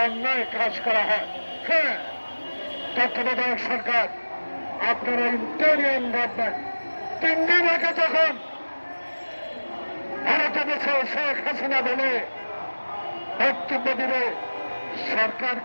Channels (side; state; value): both; inverted; correlation -1.00